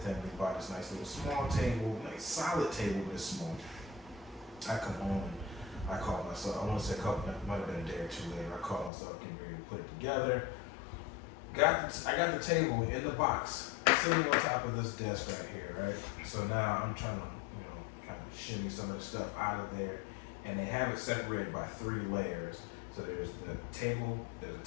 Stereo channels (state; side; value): drops out; right; at 8.9 s